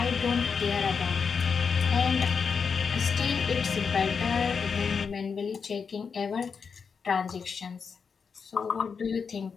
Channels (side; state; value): right; quieter; 5.9 dB